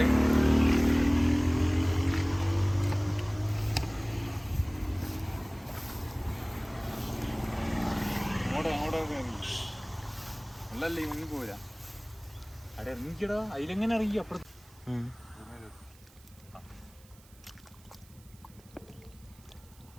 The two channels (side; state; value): right; noise; hiss, 26 dB below the sound